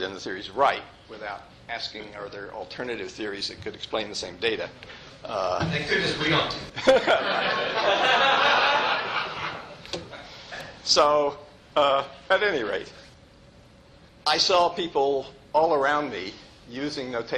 the theory is right, without asking, are there alternative theories that could explain the same data? They could just agree on. So, at any rate, I saw people all around me using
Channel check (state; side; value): identical; both; correlation 1.00